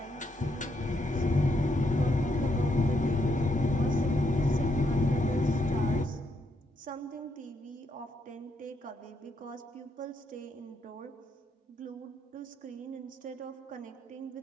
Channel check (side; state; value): both; normal; correlation 0.77